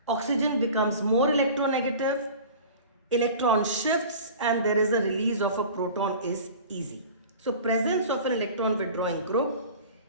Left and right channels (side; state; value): both; inverted; correlation -0.40